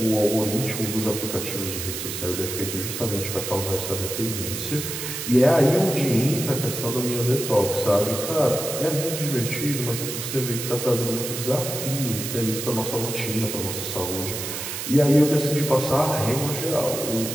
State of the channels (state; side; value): noise; right; hiss, 5 dB below the sound